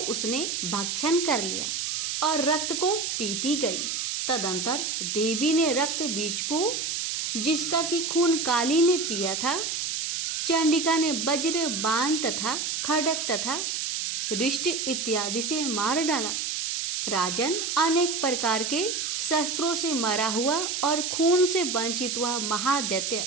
उसने भक्षण कर लिया और रक्त को पीती गई। तदंतर देवी ने रक्त बीज को, जिसका कि खून काली ने पिया था, चंडिका ने वज्र, बाण तथा खड्ग तथा रिष्ट इत्यादि से मार डाला। राजन, अनेक प्रकार के शस्त्रों से मरा हुआ और खून से वंचित हुआ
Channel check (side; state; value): right; noise; hiss, 2 dB below the sound